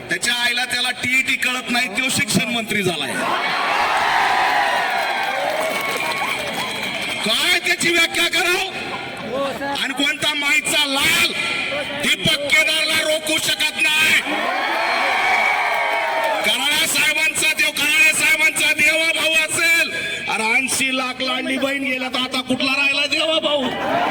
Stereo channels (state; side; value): identical; both; correlation 1.00